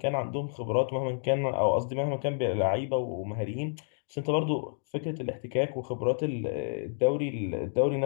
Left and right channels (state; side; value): silent; right; digital silence